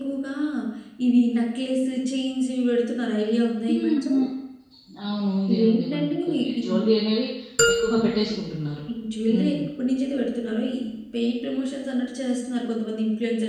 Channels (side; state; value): both; identical; correlation 1.00